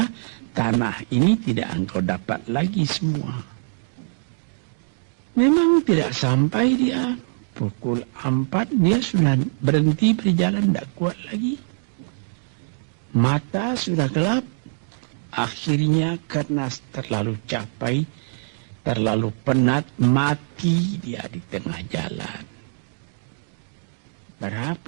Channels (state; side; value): silent; left; digital silence